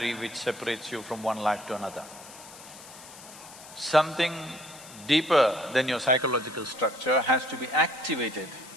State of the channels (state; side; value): noise; left; hiss, 17 dB below the sound